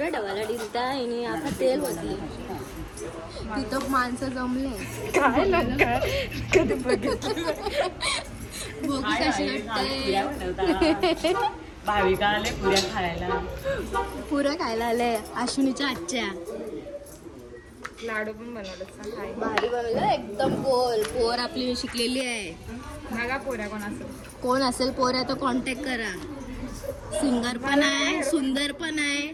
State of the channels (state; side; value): identical; both; correlation 1.00